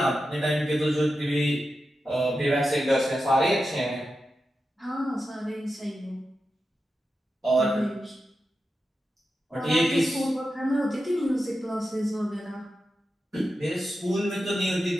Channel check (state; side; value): normal; both; correlation 0.90